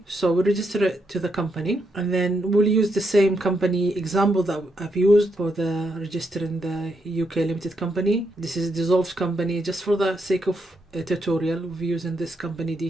So we'll register it to the company, and then we'll use the same company example that I've used for the registering the UK limited company. This is a dissolved company. Just for the sake of a tutorial, we're using this company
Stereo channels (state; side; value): normal; both; correlation 0.80